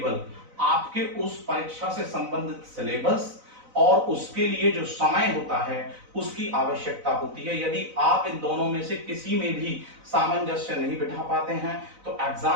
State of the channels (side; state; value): left; late; 4.0 ms